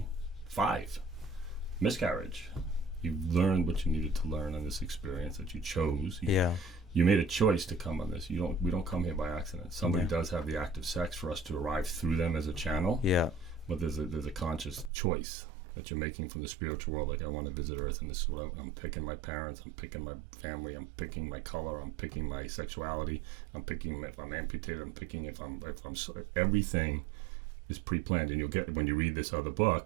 miscarriage. You've learned what you needed to learn on this experience that you chose. You made a choice to come on this. We don't come here by accident. Somebody does have the act of sex for us to arrive through them as a channel. Yeah. But there's a conscious choice that you're making from the spiritual world. Like, I want to visit Earth, and this is what I'm picking my parents, I'm picking my family, I'm picking my color, I'm picking my sexuality, I'm picking if I'm amputated, I'm picking if I'm everything is pre-planned. And you'll get, when you read this other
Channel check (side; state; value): left; drops out; at 14.9 s